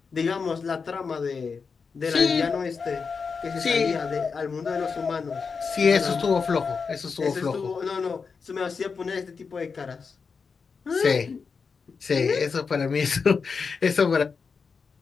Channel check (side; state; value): right; quieter; 5.3 dB